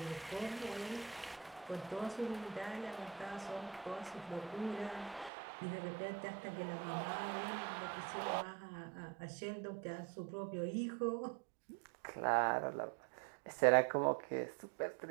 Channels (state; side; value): drops out; left; at 5.3 s